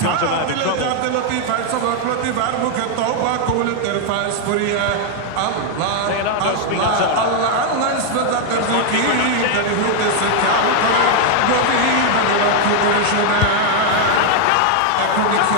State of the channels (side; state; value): both; different; correlation 0.00